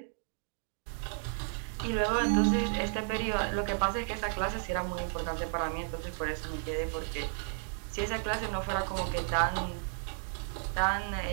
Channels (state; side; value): silent; left; 56 dB below the other